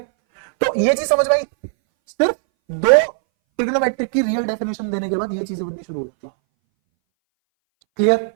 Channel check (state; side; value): silent; left; 62 dB below the other